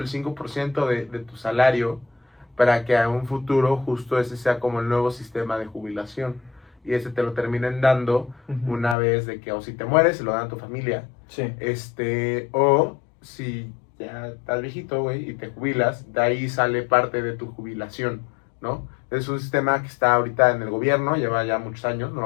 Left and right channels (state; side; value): drops out; right; at 9.0 s